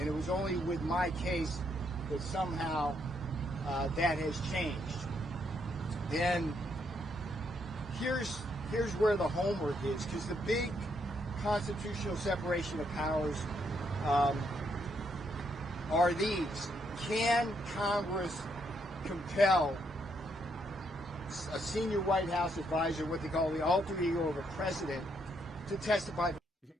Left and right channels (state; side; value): normal; both; correlation 0.75